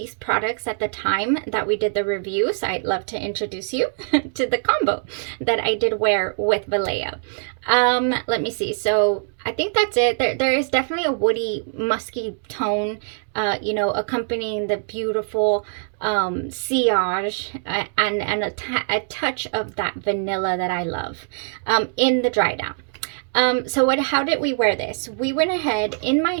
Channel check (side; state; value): left; silent; digital silence